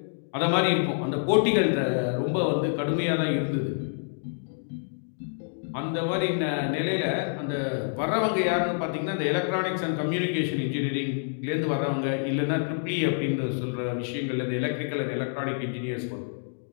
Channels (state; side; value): silent; right; digital silence